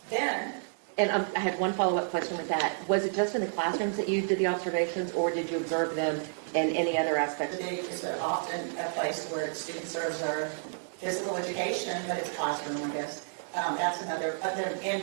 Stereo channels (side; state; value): left; silent; 57 dB below the other